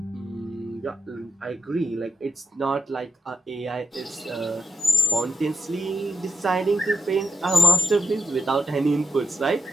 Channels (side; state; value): both; normal; correlation 0.84